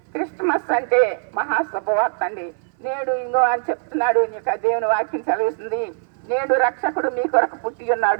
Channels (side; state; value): left; silent; 60 dB below the other